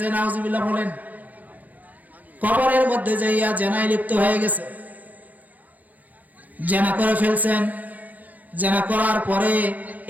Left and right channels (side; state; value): left; late; 0.080 ms